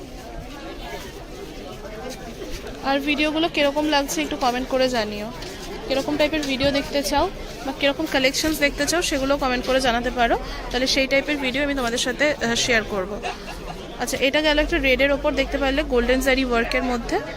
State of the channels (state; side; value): identical; both; correlation 1.00